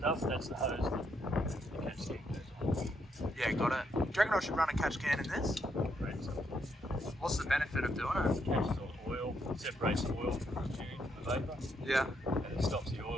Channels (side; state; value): both; normal; correlation 0.76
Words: that's the hose that the catch can goes on. Yeah, got it. Do you reckon I should run a catch can in this? Correct. What's the benefit of doing it? Catches all the oil, separates the oil from the tune from the vapour, Yeah. and it stops the